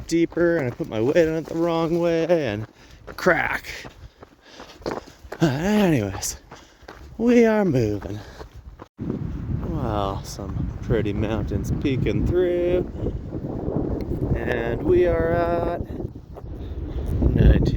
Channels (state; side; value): identical; both; correlation 1.00